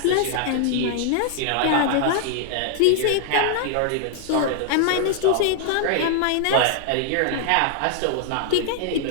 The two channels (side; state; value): both; different; correlation -0.01